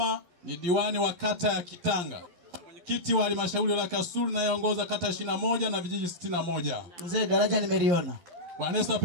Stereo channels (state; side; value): late; left; 11 ms